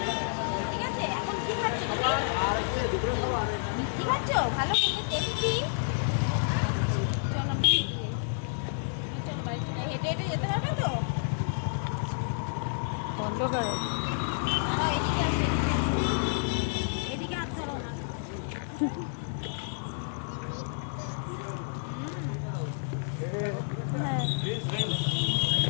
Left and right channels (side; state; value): right; silent; digital silence